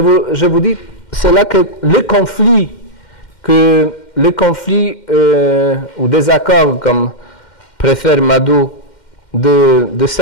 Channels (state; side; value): late; right; 2.1 ms